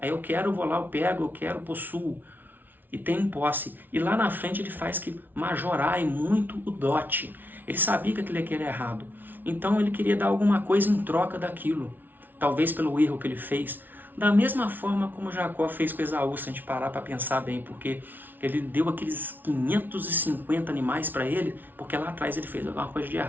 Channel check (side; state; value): left; late; 0.088 ms